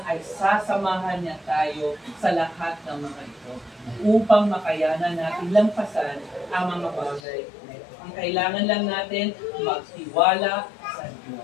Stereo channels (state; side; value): drops out; right; at 7.2 s